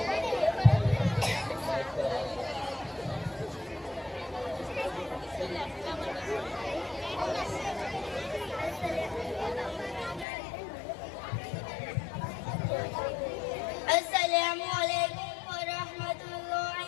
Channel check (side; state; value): right; drops out; at 10.2 s